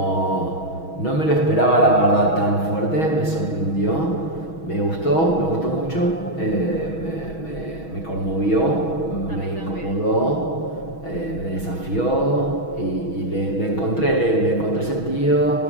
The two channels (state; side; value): late; right; 6.2 ms